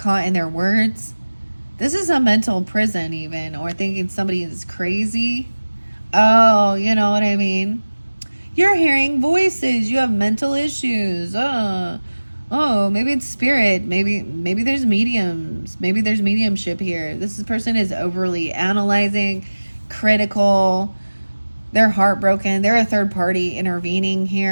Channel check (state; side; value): inverted; both; correlation -1.00